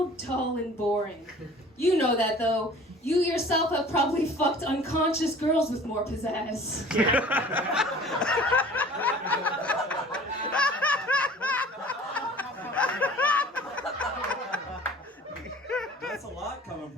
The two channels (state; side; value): normal; both; correlation 0.47